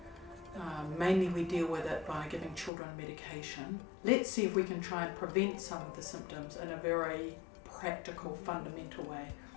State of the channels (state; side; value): drops out; right; at 2.7 s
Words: Mainly we deal with it by giving children medication. Let's see if we can try and prevent some of the symptoms in a very practical, fundamental way.